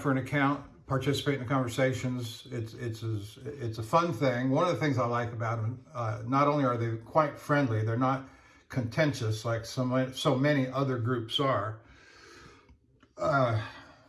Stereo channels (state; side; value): identical; both; correlation 1.00